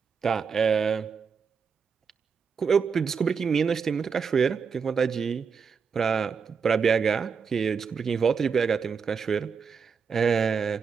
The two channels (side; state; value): left; quieter; 5.9 dB